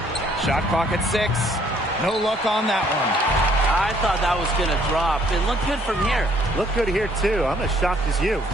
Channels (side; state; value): both; normal; correlation 0.63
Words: Shot clock at 6. No luck on that one. I thought that was going to drop. It looked good from here. Looked good here, too. I'm as shocked as you.